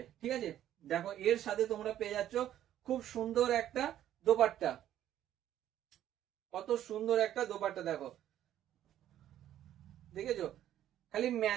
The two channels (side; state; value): left; quieter; 11.8 dB